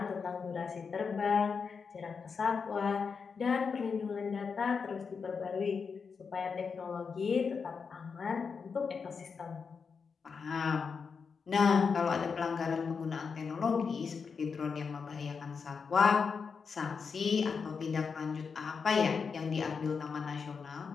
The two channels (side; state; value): right; quieter; 5.6 dB